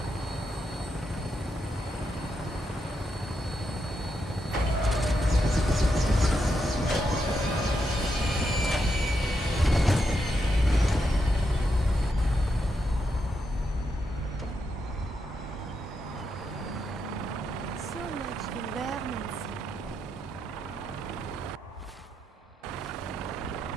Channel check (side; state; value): both; normal; correlation 0.83